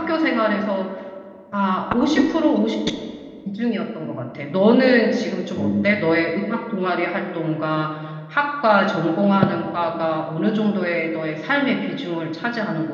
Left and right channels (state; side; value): identical; both; correlation 1.00